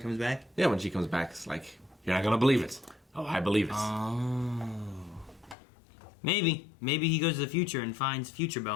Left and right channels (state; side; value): drops out; right; at 5.6 s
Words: comes back? Yeah, when she comes back, it's like, you're not going to believe it. Oh, I believe it. Oh. Maybe he goes to the future and finds future